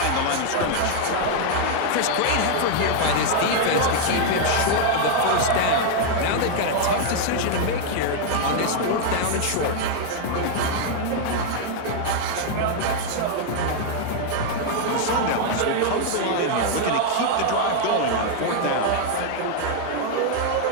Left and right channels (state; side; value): different; both; correlation 0.00